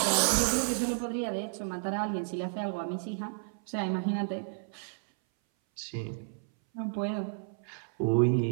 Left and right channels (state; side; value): silent; left; 57 dB below the other